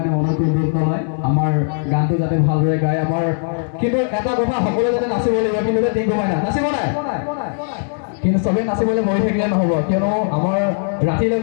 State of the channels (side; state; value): right; silent; 67 dB below the other